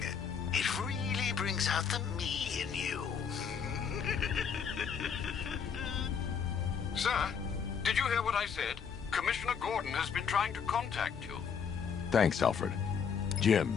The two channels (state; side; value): quieter; right; 6.8 dB